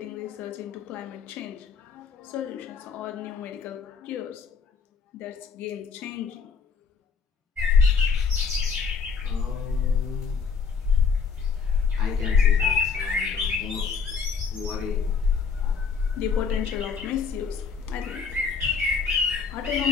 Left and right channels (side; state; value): right; quieter; 5.6 dB